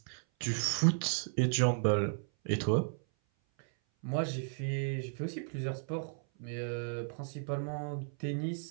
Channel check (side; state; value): left; silent; 55 dB below the other